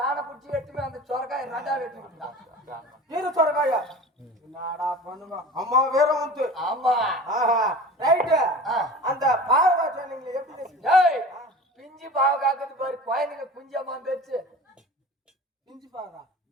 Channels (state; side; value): normal; both; correlation 0.37